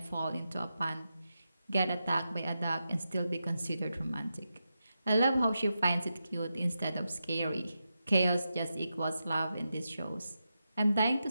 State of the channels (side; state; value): both; inverted; correlation -0.88